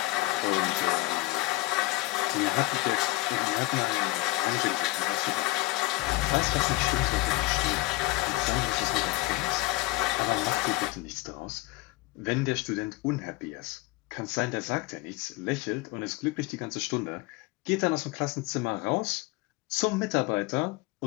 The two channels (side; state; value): right; quieter; 20.1 dB